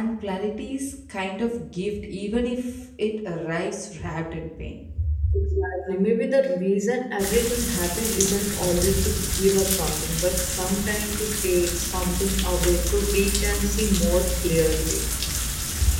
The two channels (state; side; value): identical; both; correlation 1.00